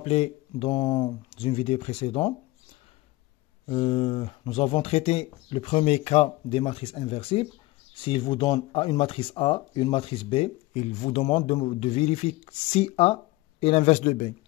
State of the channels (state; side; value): quieter; right; 19.7 dB